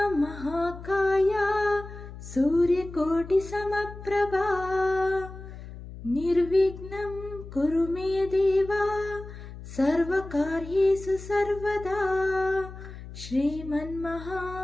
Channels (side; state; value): left; noise; hum, 13 dB below the sound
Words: महाकाय सूर्यकोटिसमप्रभा निर्विघ्नं कुरु मे देव सर्वकार्येषु सर्वदा